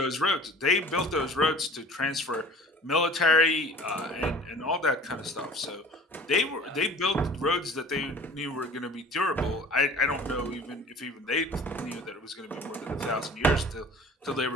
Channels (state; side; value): normal; both; correlation 0.46